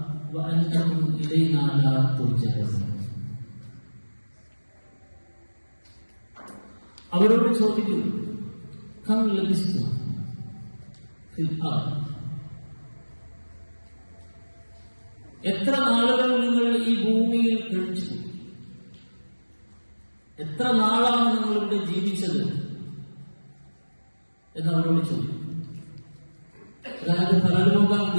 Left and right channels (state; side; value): inverted; both; correlation -1.00